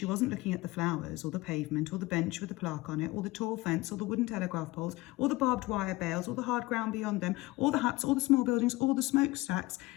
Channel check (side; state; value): right; quieter; 20.3 dB